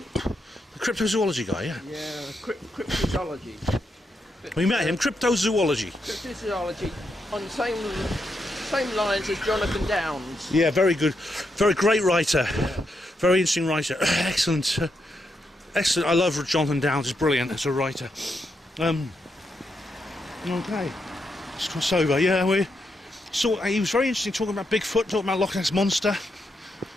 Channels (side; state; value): both; normal; correlation 0.82